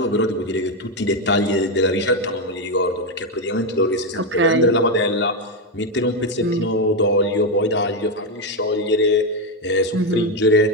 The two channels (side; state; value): both; normal; correlation 0.07